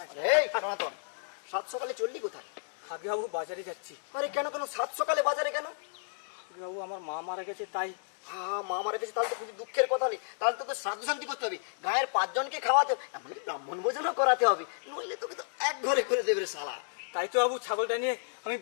এই সনাতন, সাত সকালে চললি কোথায়? আগে বাবু বাজারে যাচ্ছি। আরে কেন কেন সাত সকালে বাজারে কেন? আগে বাবু আমার মা মারা গেছে তাই। হ্যাঁ, মা মারা গেছে, তাহলে তো খুবই দুঃখের কথা নেই। তাহলে তোকে শ্রাদ্ধ শান্তি করতে হবে, গায়ের 5 জনকে খাওয়াতে হবে, এমনকি ব্রাহ্মণ ভোজনও করাতে হবে, নইলে তোকে তো এক ঘরে করে দেবে রে শালা। তাই তো বাবু ছাগলটা নিয়ে আমি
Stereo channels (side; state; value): right; silent; digital silence